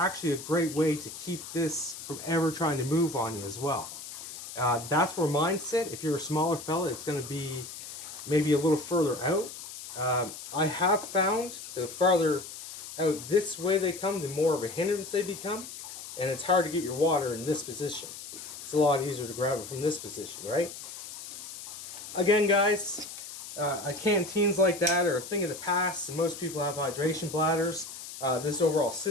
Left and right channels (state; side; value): noise; left; hiss, 11 dB below the sound